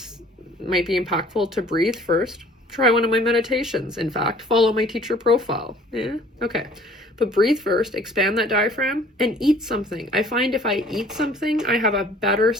might be impactful to breathe first. Try one of my meditations. In fact, follow my teacher profile. Yeah, okay. But breathe first, expand that diaphragm, and eat something. I find if I eat something, I have a better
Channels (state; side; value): normal; both; correlation 0.53